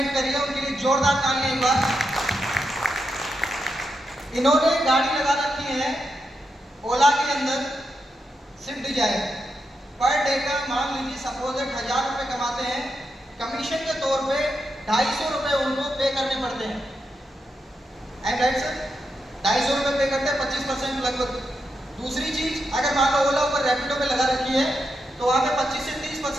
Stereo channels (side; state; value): both; normal; correlation 0.85